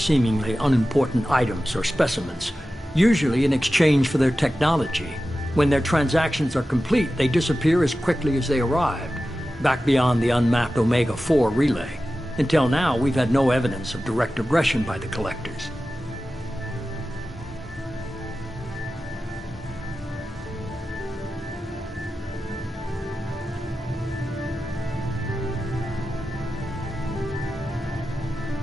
unimportant items or specimens, usually in exchange for their technology. When their transactions are complete, they disappear as quickly as they arrived, back beyond the unmapped Omega-4 relay. Until now, we've had no evidence of direct aggression by the Collectors.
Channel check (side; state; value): both; normal; correlation 0.94